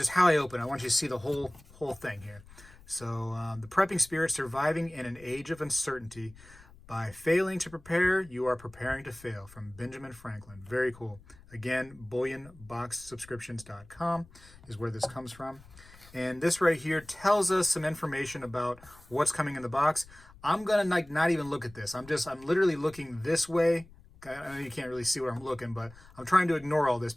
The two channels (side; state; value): left; noise; rumble, 23 dB below the sound